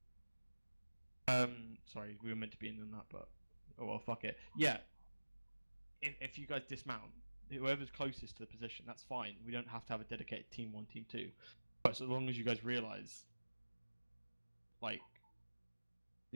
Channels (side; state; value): both; inverted; correlation -1.00